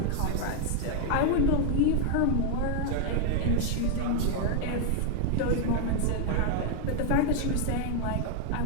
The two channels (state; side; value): different; both; correlation 0.00